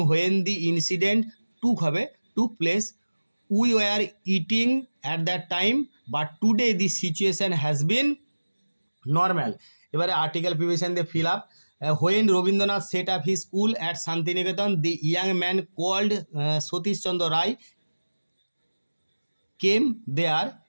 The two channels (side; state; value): both; inverted; correlation -1.00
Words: when the incident took place, we were eating at that time but today the situation has been normal. এবারে আর্টিকেল প্রিভিশন দিয়ে fill up. When Rabindranath set up he school at Shantiniketan the young man called Satish Chandra Ray came there